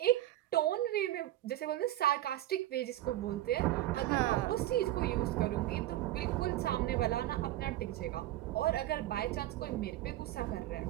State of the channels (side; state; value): left; quieter; 14.5 dB